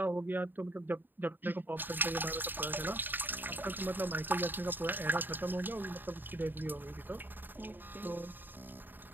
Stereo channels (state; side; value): late; left; 0.092 ms